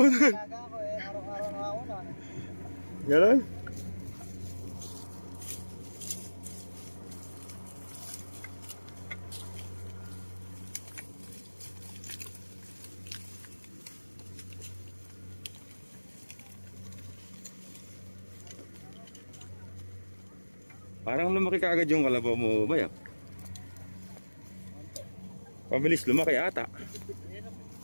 Gaga ako eh, araw-araw na ako na. Ganon? Parang lumaki ka agad yung kalabaw mo, Bayak. Pabilis lumaki ata.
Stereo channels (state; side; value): inverted; both; correlation -1.00